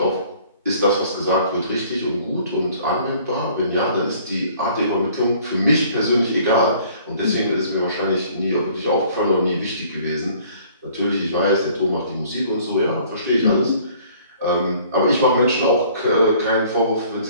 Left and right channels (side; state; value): both; inverted; correlation -0.55